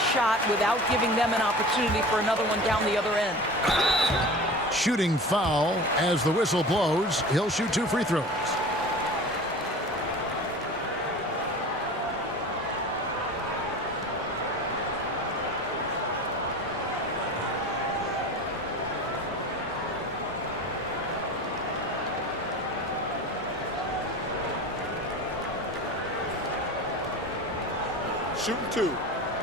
shot without giving them an opportunity for another one down the other end. Shooting foul as the whistle blows. He'll shoot 2 free throws. Shooting 2.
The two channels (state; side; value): normal; both; correlation 0.36